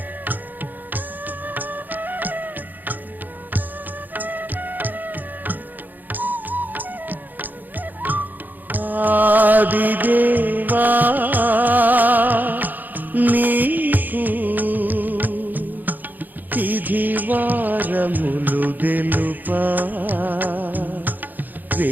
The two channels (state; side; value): late; left; 0.085 ms